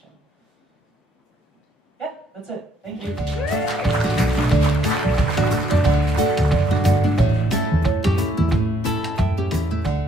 Yeah, that's it. Thank you.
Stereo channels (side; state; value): both; normal; correlation 0.69